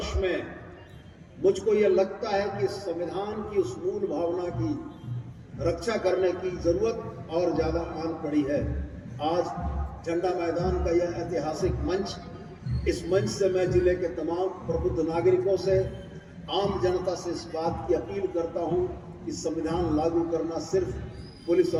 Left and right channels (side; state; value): both; identical; correlation 1.00